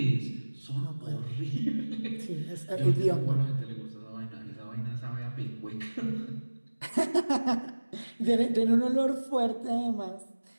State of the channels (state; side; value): inverted; both; correlation -1.00